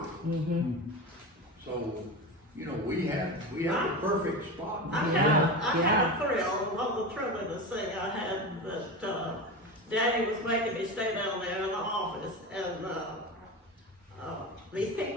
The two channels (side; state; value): both; normal; correlation 0.25